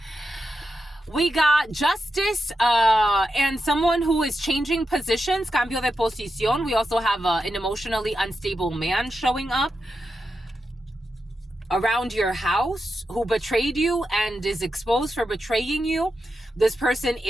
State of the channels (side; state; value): both; normal; correlation 0.87